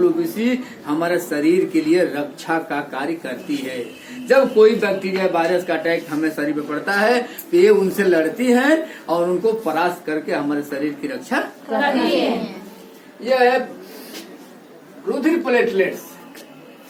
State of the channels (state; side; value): identical; both; correlation 1.00